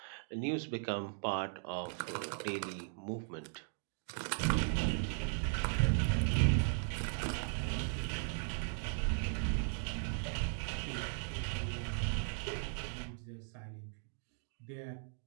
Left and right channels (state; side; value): silent; left; 53 dB below the other